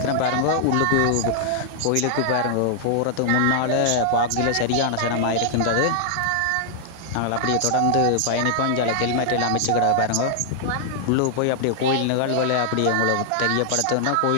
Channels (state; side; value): different; both; correlation -0.01